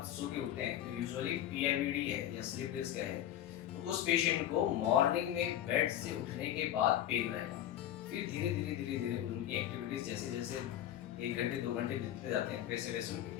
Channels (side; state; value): right; quieter; 11.8 dB